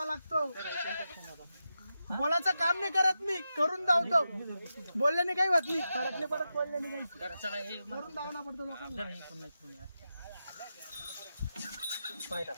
लागतो. बोलायचं काम नाही करत मी, करून धावतो. बोलल्याने काही होत नाही, फरक नाही पडत बोलल्याने काही. करून धावना पडतो लोकांना.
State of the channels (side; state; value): both; inverted; correlation -0.89